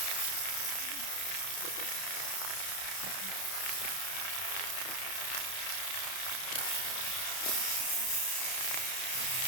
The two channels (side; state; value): right; late; 31 ms